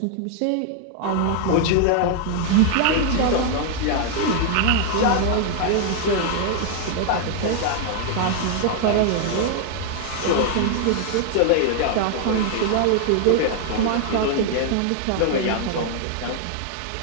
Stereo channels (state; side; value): different; both; correlation 0.00